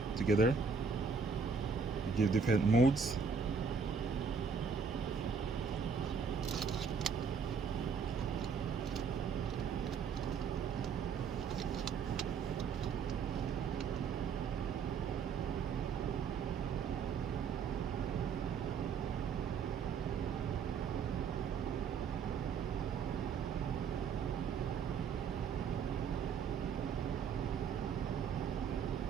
together, it gives different modes.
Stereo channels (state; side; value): quieter; left; 5.8 dB